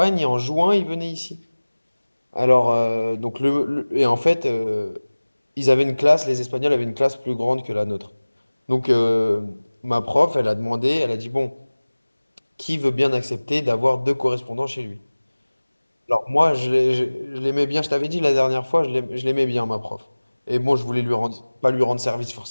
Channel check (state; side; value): inverted; both; correlation -1.00